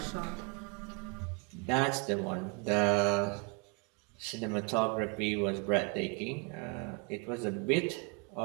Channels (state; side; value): quieter; left; 32.4 dB